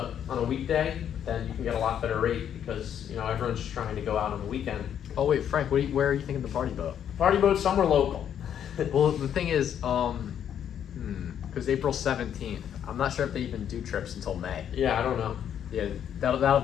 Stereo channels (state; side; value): quieter; right; 9.3 dB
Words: weekday, then you can get a lot better rate, because everyone's just trying to go out on the weekend. Oh wait, Frank, where are you thinking the party boat? Party boat somewhere local. Well, the thing is, because April 17th, I'm not sure if they even do trips until May. Yeah, I don't know. Yeah, that'll